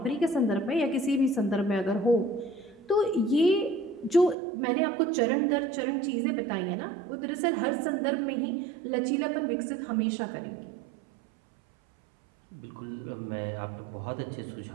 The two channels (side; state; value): left; drops out; at 4.4 s